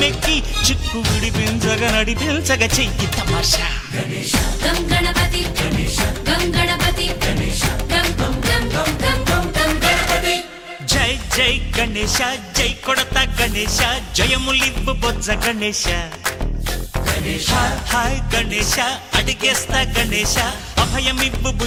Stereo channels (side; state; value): both; identical; correlation 1.00